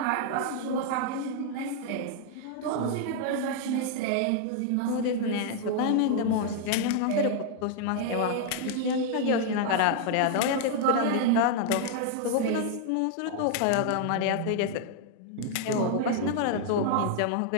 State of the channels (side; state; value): both; different; correlation 0.00